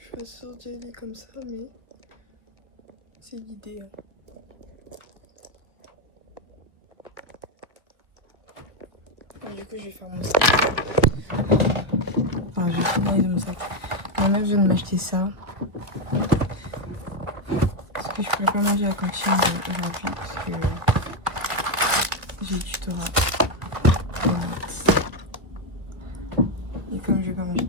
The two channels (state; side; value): late; left; 1.4 ms